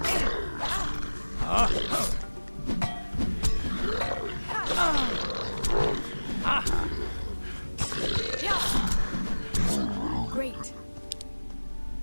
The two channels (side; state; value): both; inverted; correlation -1.00